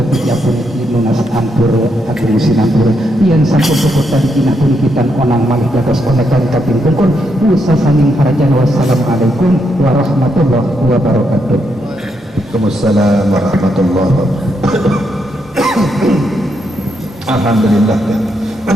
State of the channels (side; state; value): both; normal; correlation 0.79